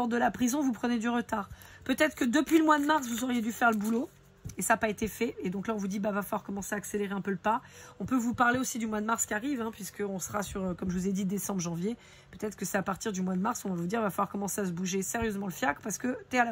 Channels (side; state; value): both; identical; correlation 1.00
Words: de la prison, vous prenez du retard. Peut-être que depuis le mois de mars, vous auriez dû faire le boulot et ça n'a pas été fait. Et donc là, on vous dit, bah, va falloir commencer à accélérer un peu le pas. On peut vous parler aussi du mois de mars qui arrive, hein, puisqu'on sera sur, comme je vous ai dit, décembre, janvier. Peut-être que c'est à partir du mois de mars, on va vous dire, va falloir commencer à se bouger sérieusement le fiac parce que t'es à la